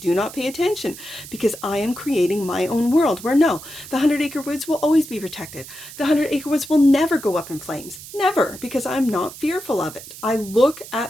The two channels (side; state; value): right; noise; hiss, 15 dB below the sound